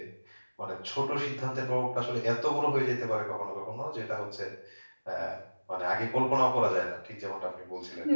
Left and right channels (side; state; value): both; inverted; correlation -1.00